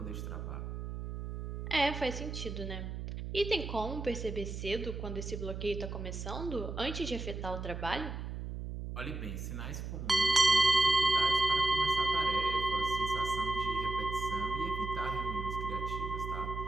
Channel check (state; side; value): noise; right; hum, 6 dB below the sound